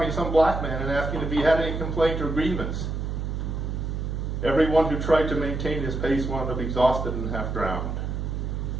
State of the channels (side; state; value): right; noise; hum, 3 dB below the sound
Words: some black man and asking if he had any complaint or grievance. Everyone who tried to maintain his pace wound up exhausted and half drowned.